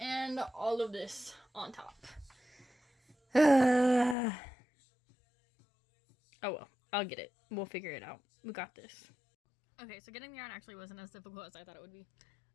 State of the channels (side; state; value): right; drops out; at 4.2 s